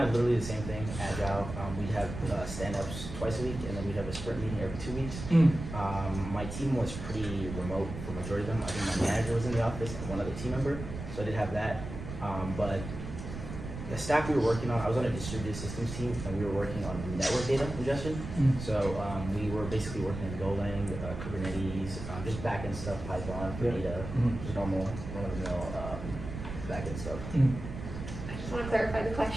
of literally the same thing, agile. We'd have stand-ups twice a week, and then we'd have a sprint meeting every 2 weeks. My team was pretty remote for the majority of them. I think my manager was in the office and one other team member, so I did have that. But the stack we were working on, I was on a distributed systems team, and we were working on network data ingestion. So we were basically working in Golang, Kubernetes, just backend stuff, Python for data, just normal backend stuff. I just want to clarify the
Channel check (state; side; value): noise; right; rumble, 8 dB below the sound